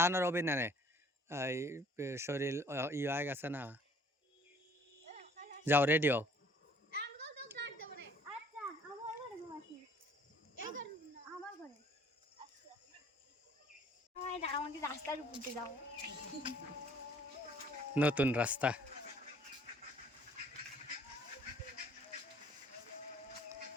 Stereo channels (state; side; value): normal; both; correlation 0.57